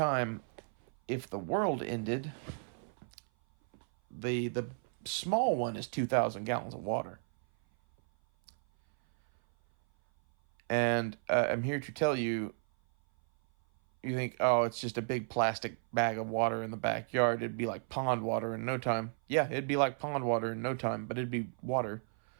if the world ended, the small one is 2,000 gallons of water. And I'm here to tell you, you think, oh, it's just a big plastic bag of water in the backyard. It'd be like pond water in no time. Yeah, it'd be like pond water in no time, but it'd be water.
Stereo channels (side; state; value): left; silent; 55 dB below the other